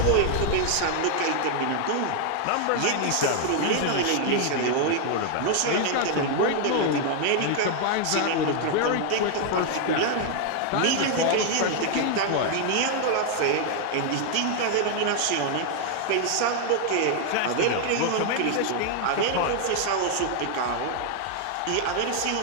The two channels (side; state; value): both; different; correlation 0.00